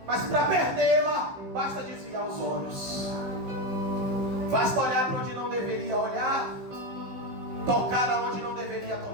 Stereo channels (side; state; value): left; late; 15 ms